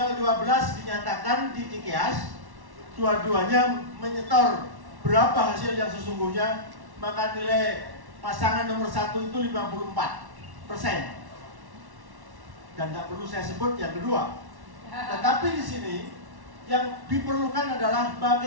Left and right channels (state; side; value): late; left; 1.1 ms